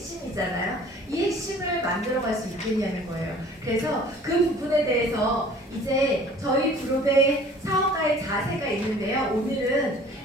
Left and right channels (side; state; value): both; normal; correlation 0.50